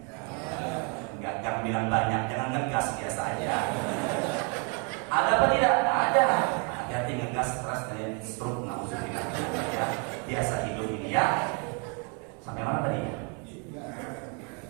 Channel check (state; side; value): quieter; left; 35.1 dB